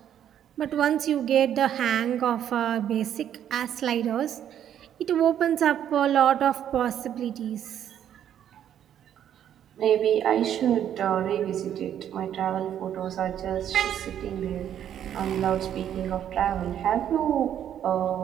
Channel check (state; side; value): quieter; left; 10.1 dB